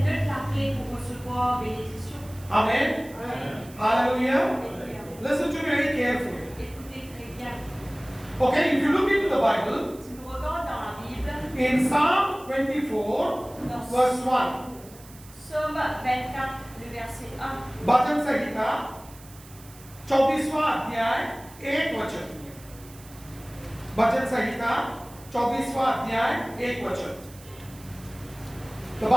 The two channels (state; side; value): noise; right; hiss, 21 dB below the sound